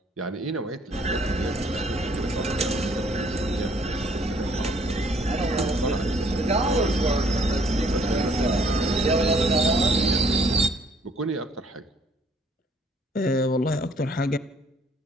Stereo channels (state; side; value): normal; both; correlation 0.63